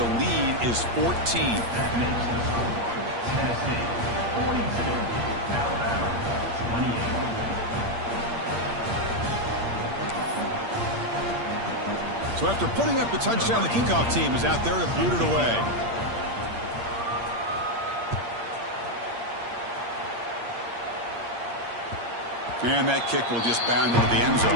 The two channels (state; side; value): late; left; 8.6 ms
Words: lead is 14. That makes the score Tennessee 42, Alabama 28. So after putting up the touchdown, the kickoff team is out there to boot it away. And that kick will just bound into the end